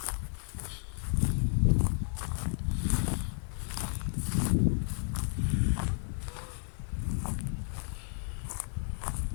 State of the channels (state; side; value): silent; right; 55 dB below the other